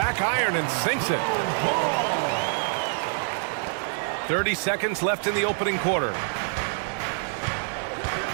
iron and sinks it. 30 seconds left in the opening quarter.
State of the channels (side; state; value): left; silent; 61 dB below the other